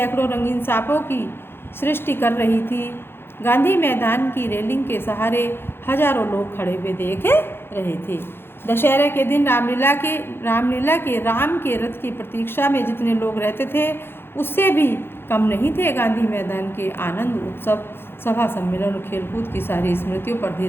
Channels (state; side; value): late; right; 0.11 ms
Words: रंगीन सांपों की सृष्टि कर रही थी। गांधी मैदान की रेलिंग के सहारे हजारों लोग खड़े हुए देख रहे थे। दशहरे के दिन रामलीला के राम के रथ की प्रतीक्षा में जितने लोग रहते थे, उससे भी कम नहीं थे। गांधी मैदान के आनंद उत्सव, सभा सम्मेलन और खेलकूद की सारी स्मृतियों पर